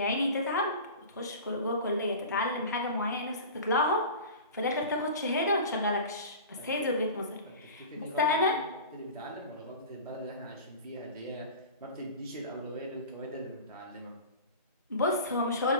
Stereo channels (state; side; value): inverted; both; correlation -0.35